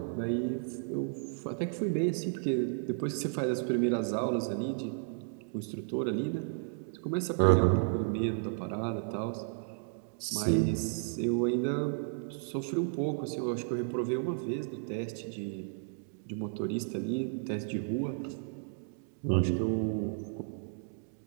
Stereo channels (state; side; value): silent; left; digital silence